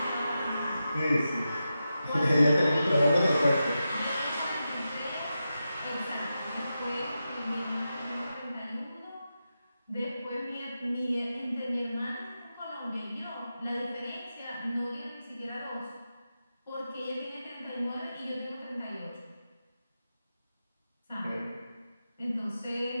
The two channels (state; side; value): inverted; both; correlation -0.90